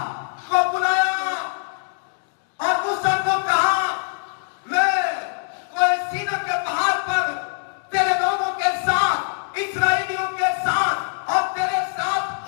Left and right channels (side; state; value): right; silent; digital silence